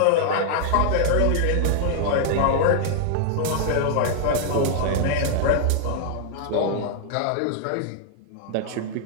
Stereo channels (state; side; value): different; both; correlation 0.00